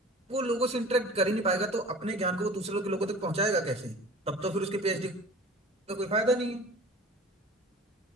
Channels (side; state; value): both; normal; correlation 0.41